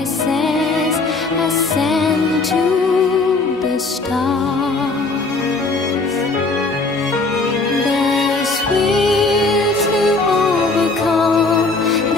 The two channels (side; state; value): right; quieter; 3.6 dB